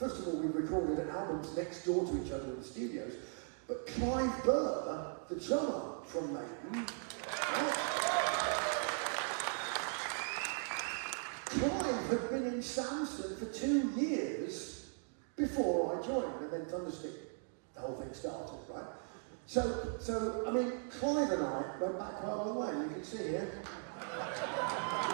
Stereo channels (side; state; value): left; silent; 52 dB below the other